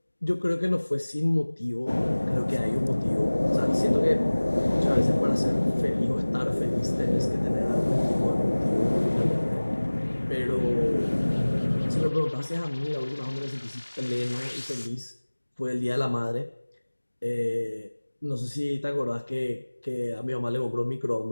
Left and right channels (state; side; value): inverted; both; correlation -1.00